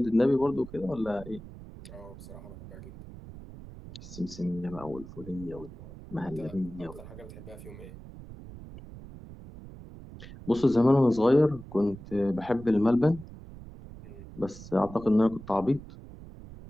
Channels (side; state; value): right; noise; rumble, 15 dB below the sound